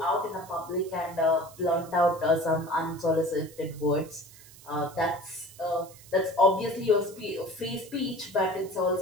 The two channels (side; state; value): right; noise; hiss, 21 dB below the sound